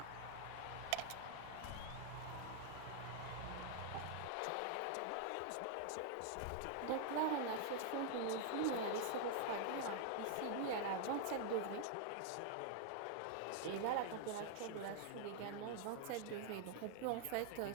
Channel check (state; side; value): different; both; correlation 0.00